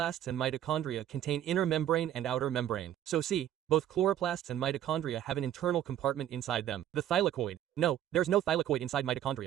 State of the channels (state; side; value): quieter; left; 11.4 dB